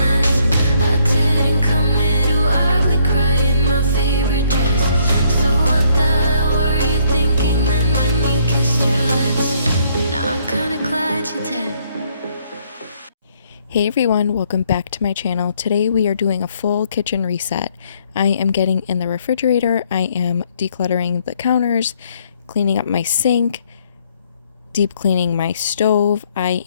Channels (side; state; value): both; inverted; correlation -0.68